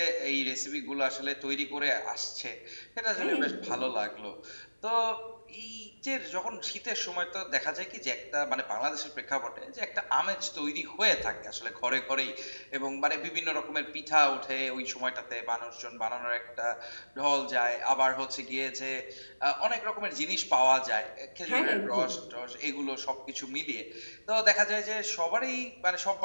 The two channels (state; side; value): inverted; both; correlation -1.00